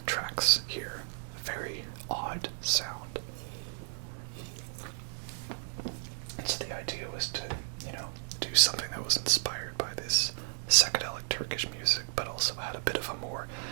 tracks here. Very odd sound. And so the idea was to, do something that was inspired by this psychedelic Turkish music, but also had a bit of a more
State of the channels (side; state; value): left; silent; digital silence